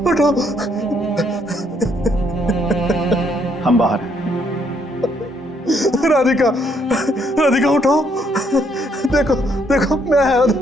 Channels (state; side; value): normal; both; correlation 0.71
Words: उठो। हम बाहर हैं। राधिका, राधिका उठो। देखो देखो मैं आया।